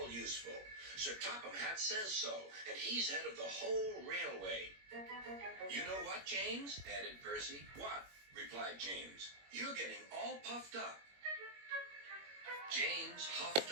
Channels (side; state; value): left; late; 21 ms